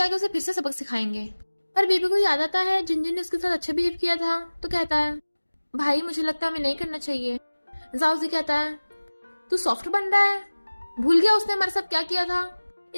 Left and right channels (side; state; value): both; inverted; correlation -1.00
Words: उसे फिर से सबक सिखाएंगे। पर बेबी को याद आता है जिनजिन ने उसके साथ अच्छा बिहेव किया था, तो कहता है भाई मुझे लगता है हमें नहीं करना चाहिए। जाओजी कहता है तू सॉफ्ट बन रहा है, भूल गया उसने हमारे साथ क्या किया था।